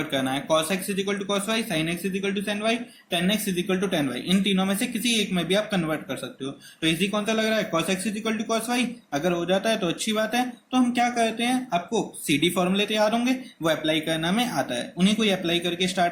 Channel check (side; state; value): both; identical; correlation 1.00